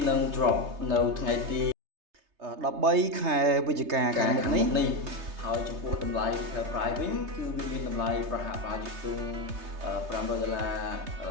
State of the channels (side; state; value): left; late; 3.3 ms